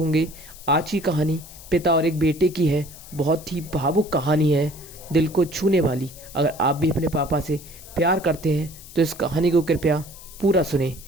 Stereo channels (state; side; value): noise; left; hiss, 18 dB below the sound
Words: आज की कहानी पिता और एक बेटे की है। बहुत ही भावुक कहानी है, दिल को छूने वाली। अगर आप भी अपने पापा से प्यार करते हैं तो इस कहानी को कृपया पूरा सुने।